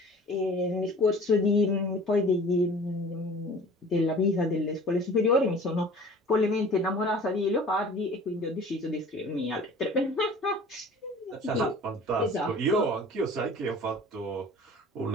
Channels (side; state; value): both; normal; correlation 0.45